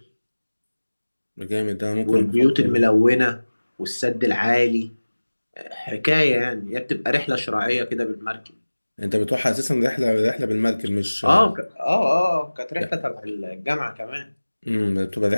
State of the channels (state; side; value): inverted; both; correlation -1.00